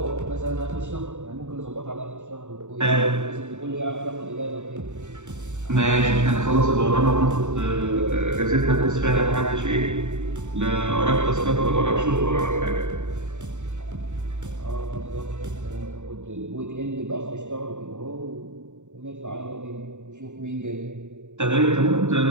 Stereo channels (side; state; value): left; late; 0.84 ms